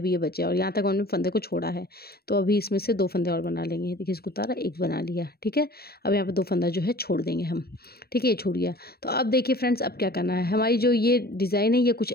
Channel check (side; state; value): right; late; 0.45 ms